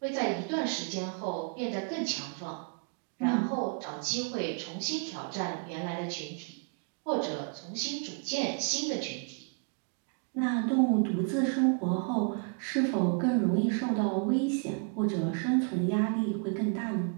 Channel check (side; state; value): left; quieter; 38.4 dB